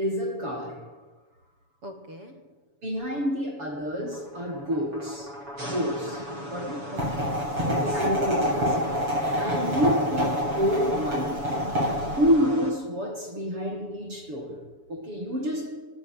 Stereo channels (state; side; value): late; left; 7.0 ms